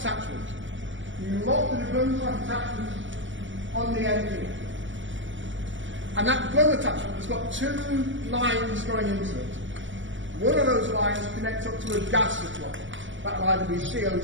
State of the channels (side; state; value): left; late; 0.55 ms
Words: You lock the gun type attachment on the end here. And that gun attachment has got two lines going into it. One of those lines connects up to a gas supply. That'll either be